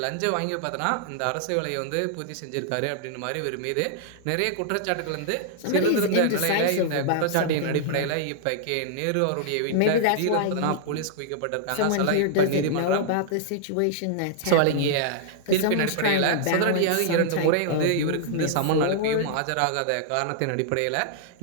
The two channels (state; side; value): different; both; correlation -0.01